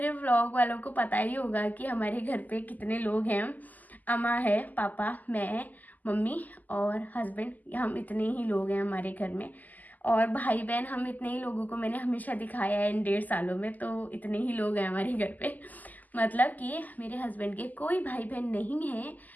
व्लॉग वालों को पता ही होगा कि हमारे घर पे कितने लोग हैं। अम्मा है, पापा, मैं, मम्मी और हस्बैंड, हम इतने ही लोग हैं हमारे घर में। और भाई बहन हम इतने ही लोगों को मैंने हमेशा दिखाया है इन 1.5 सालों में, तो इतने ही लोग हैं हमारे घर पे। मतलब कि मेरे हस्बैंड के कोई भाई बहन नहीं है,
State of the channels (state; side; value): late; right; 0.082 ms